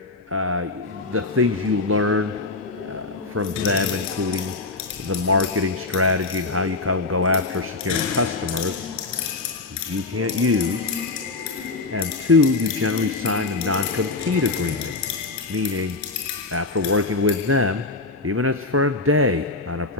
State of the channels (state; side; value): quieter; right; 3.5 dB